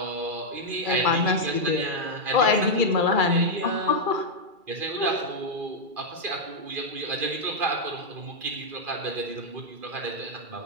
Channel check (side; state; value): left; late; 2.3 ms